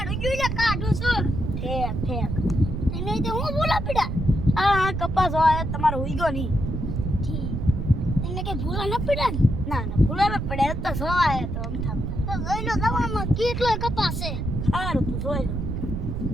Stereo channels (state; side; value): noise; right; rumble, 3 dB below the sound